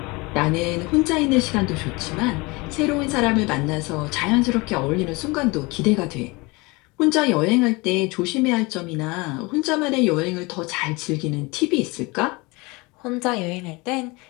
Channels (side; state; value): right; quieter; 25.2 dB